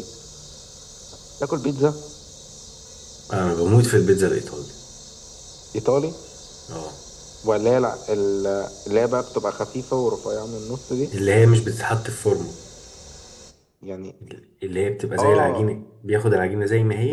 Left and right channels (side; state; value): both; identical; correlation 1.00